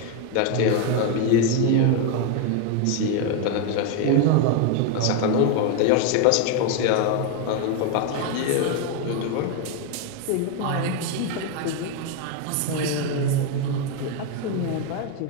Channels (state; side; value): different; both; correlation 0.01